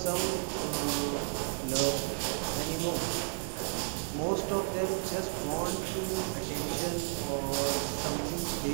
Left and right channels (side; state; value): left; silent; digital silence